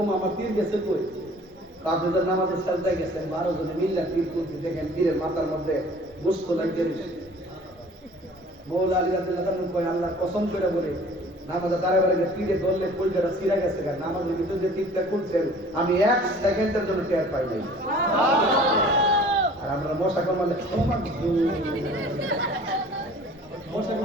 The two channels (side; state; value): both; normal; correlation 0.49